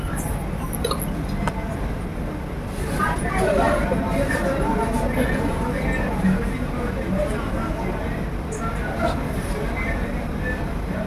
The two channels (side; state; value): both; identical; correlation 1.00